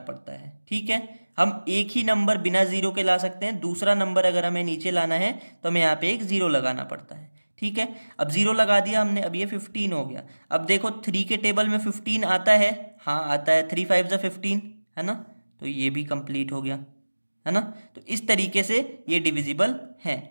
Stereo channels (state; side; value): inverted; both; correlation -1.00